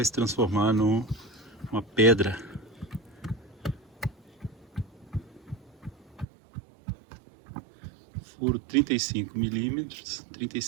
se transformar numa pedra. Furo 35 milímetros,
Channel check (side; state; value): left; drops out; at 6.2 s